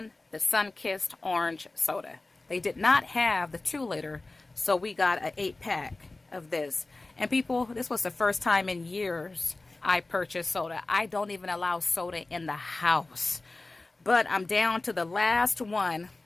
the sun-kissed orange soda. They did not have the 2-liter, so we got an 8-pack of this. And people, this was the first time in years I purchased soda. I don't even allow soda in the house. But I'm down to the last one.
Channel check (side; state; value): right; quieter; 3.2 dB